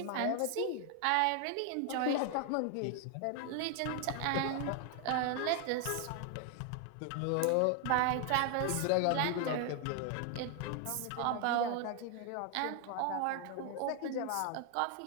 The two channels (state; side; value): different; both; correlation 0.00